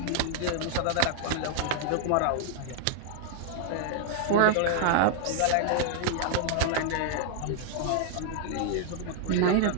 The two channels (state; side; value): different; both; correlation 0.00